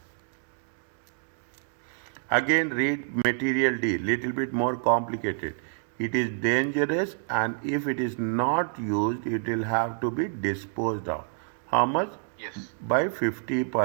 Again, read material D. Little bit more complicated. It is dangerous, and if it is not used, it will have to be disposed of. How much? Yes. By 50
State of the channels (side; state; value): left; silent; 59 dB below the other